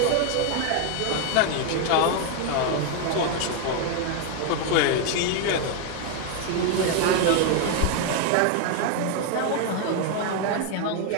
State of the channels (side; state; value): both; different; correlation 0.01